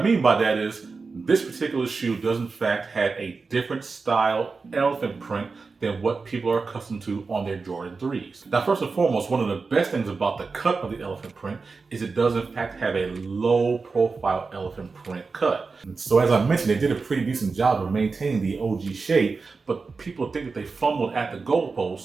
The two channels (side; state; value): left; quieter; 4.4 dB